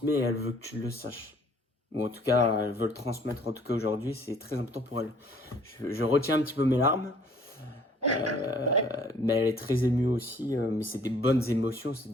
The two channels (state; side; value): normal; both; correlation 0.57